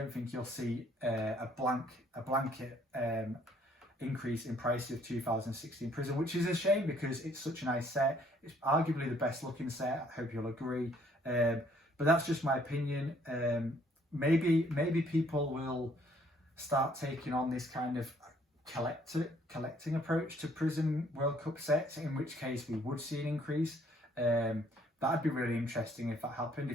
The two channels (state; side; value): normal; both; correlation 0.63